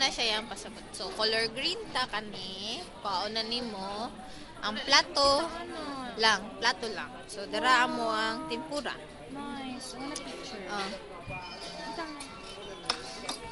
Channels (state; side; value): identical; both; correlation 1.00